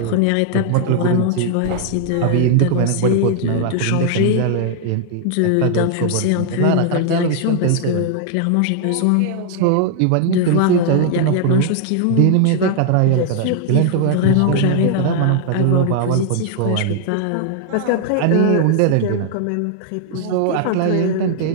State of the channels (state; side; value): different; both; correlation 0.00